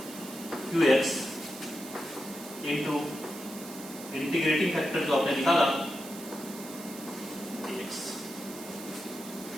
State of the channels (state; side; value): noise; right; hiss, 13 dB below the sound